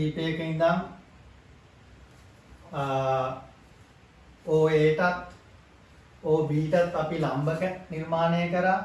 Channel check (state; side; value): identical; both; correlation 1.00